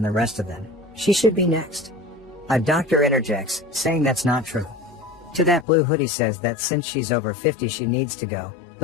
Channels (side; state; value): right; drops out; at 5.7 s